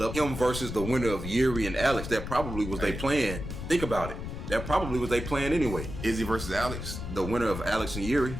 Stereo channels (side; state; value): left; noise; rumble, 7 dB below the sound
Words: up him versus the winner of Jiří and Alex. That probably was their plan. Think about it. That probably was their plan anyway. Izzy versus Alex, the winner of Alex and Jiří.